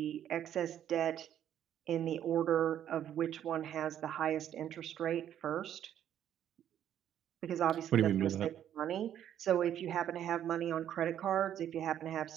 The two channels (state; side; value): quieter; left; 10.4 dB